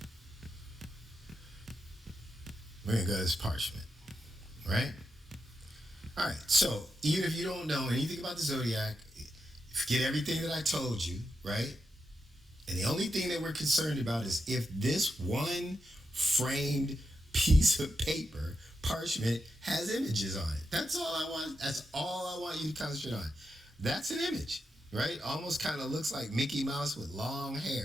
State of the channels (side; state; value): both; normal; correlation 0.86